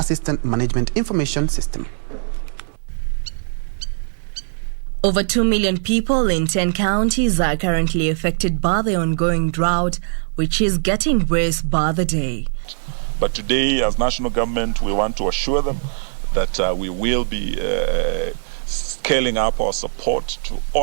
Management Information System. Over 2 million people in 10 counties are currently affected by the ongoing drought, which is getting worse by the day. But today, as national government, we want to assure them that we will be scaling up our support to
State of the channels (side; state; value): left; silent; 65 dB below the other